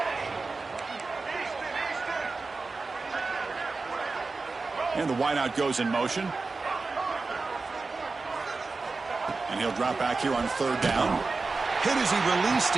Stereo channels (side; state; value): left; quieter; 3.9 dB